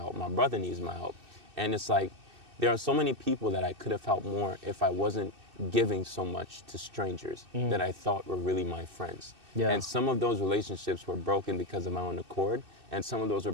My brother needs my help. And it's like, there are so many people that I could have helped more if I wasn't giving so much to strangers that I thought were really my friends. Yeah. And some of those relationships were broken because of my own accord, and some of those were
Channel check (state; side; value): late; left; 2.6 ms